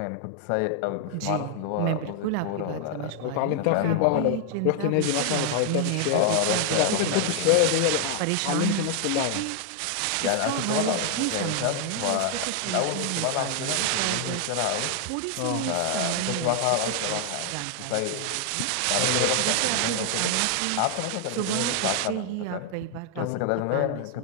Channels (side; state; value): both; different; correlation 0.00